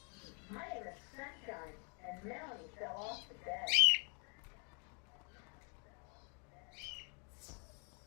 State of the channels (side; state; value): right; quieter; 37.1 dB